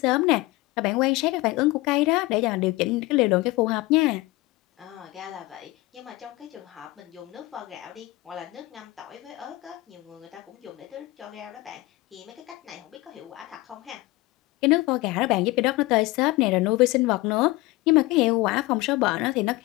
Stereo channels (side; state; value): right; quieter; 20.5 dB